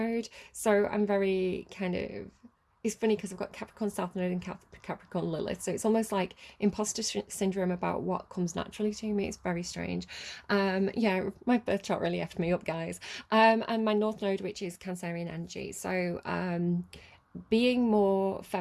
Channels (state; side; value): identical; both; correlation 1.00